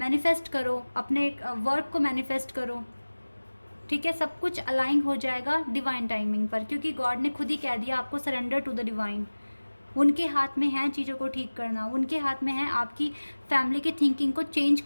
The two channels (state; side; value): inverted; both; correlation -1.00